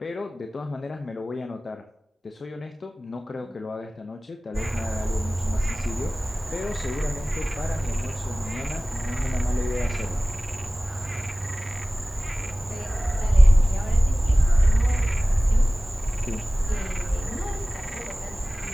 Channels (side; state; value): both; normal; correlation 0.98